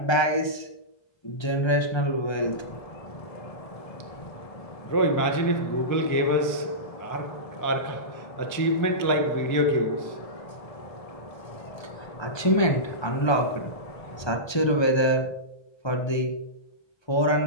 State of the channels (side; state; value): right; late; 1.3 ms